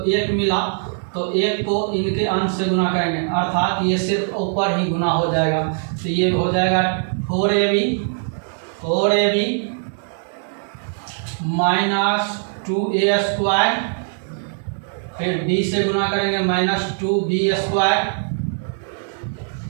1 मिला तो 1 को इनके अंश से गुना करेंगे अर्थात ये सिर्फ ऊपर ही गुना हो जाएगा तो ये हो जाएगा 4ab माइनस 2a स्क्वायर फिर b से गुना करेंगे माइनस 2b स्क्वायर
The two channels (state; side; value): silent; left; 65 dB below the other